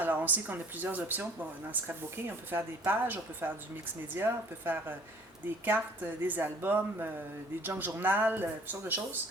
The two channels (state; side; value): normal; both; correlation 0.54